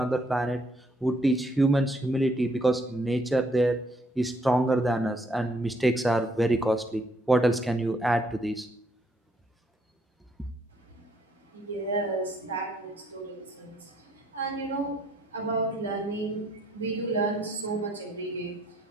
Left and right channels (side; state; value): both; normal; correlation 0.69